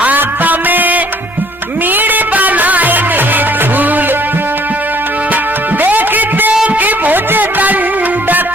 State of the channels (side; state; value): both; normal; correlation 0.60